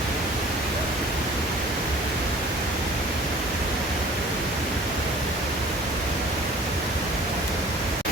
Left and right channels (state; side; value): normal; both; correlation 0.49